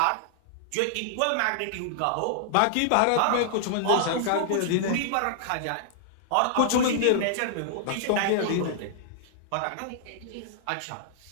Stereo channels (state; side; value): different; both; correlation -0.01